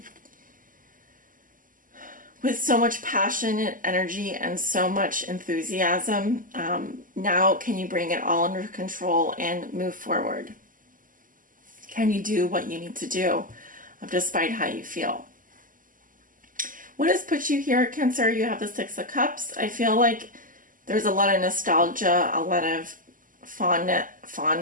with so much passion and energy and so much enthusiasm, now can you bring it all under control and move forward? Can you do what you need to do despite how you feel? What has put you here, Cancer? You have the Six of Cups. I feel like there's a lot of nostalgia, a lot of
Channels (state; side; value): late; left; 0.39 ms